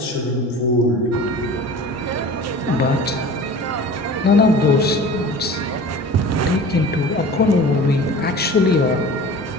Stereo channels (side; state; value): both; normal; correlation 0.39